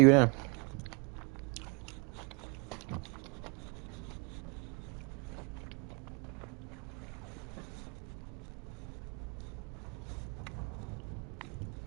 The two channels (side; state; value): left; quieter; 31.9 dB